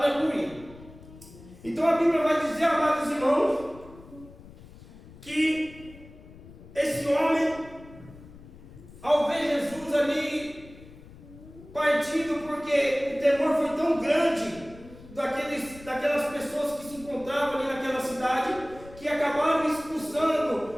Então a Bíblia vai dizer, amados irmãos, que esse homem, ao ver Jesus ali partido, porque o temor foi tão grande daquelas pessoas que se encontravam ali naquela cidade, que acabaram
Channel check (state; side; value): noise; left; rumble, 19 dB below the sound